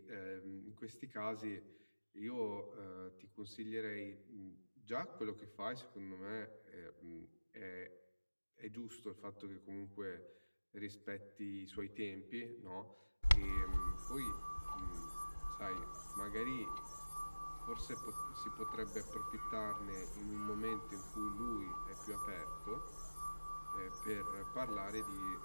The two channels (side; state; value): both; inverted; correlation -1.00